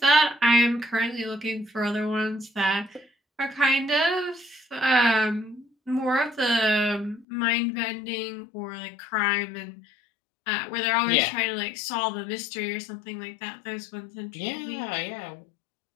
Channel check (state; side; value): drops out; right; at 7.2 s